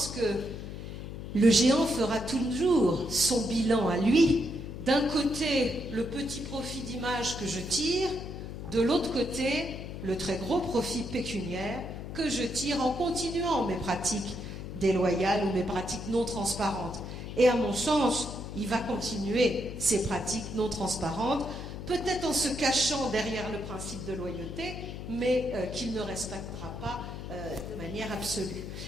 que le géant fera toujours son bilan à lui. D'un côté, le petit profit d'image que je tire, de l'autre côté, le très gros profit pécuniaire que je tire en continuant mes pratiques déloyales ou mes pratiques non transparentes. Et à mon sens, il va continuer ces pratiques non transparentes, peut-être en se cachant derrière le principe de loyauté, mais qu'il ne respectera pas de manière absolue.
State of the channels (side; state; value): left; noise; hum, 8 dB below the sound